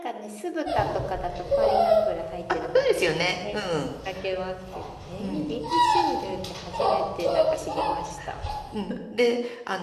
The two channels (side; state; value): both; identical; correlation 1.00